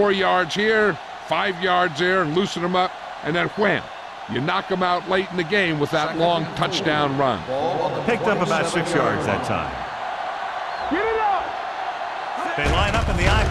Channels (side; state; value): both; identical; correlation 1.00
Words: yards here, 5 yards there, and loosen them up, and then wham. You knock them out late in the game with that long touchdown run. Picked up about 6 yards that time. Get it up! They line up in the I